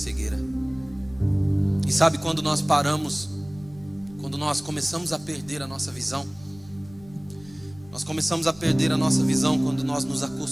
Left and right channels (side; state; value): left; noise; rumble, 23 dB below the sound